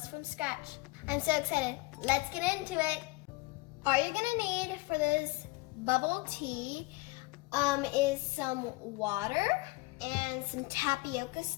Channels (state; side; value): quieter; right; 23.5 dB